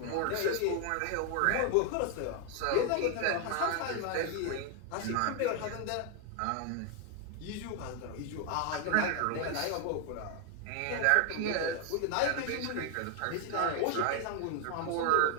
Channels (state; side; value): different; both; correlation 0.01